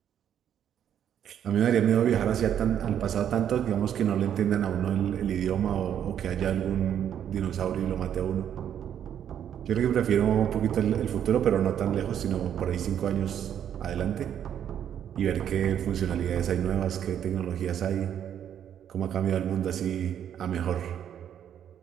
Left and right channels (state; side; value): quieter; left; 9.5 dB